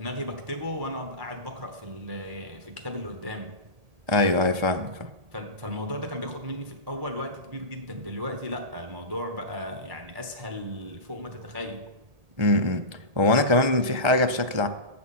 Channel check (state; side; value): late; left; 1.8 ms